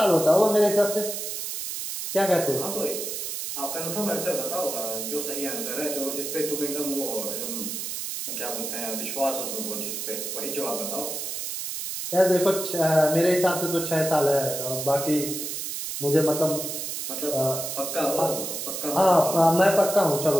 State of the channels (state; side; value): noise; right; hiss, 5 dB below the sound